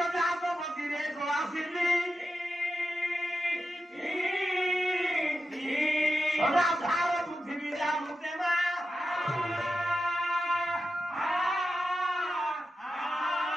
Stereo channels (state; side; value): normal; both; correlation 0.90